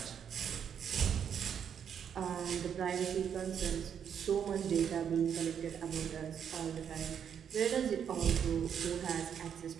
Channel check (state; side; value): quieter; left; 8.1 dB